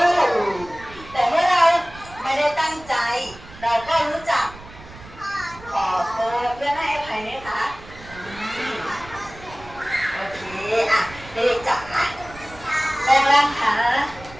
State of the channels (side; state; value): right; noise; rumble, 18 dB below the sound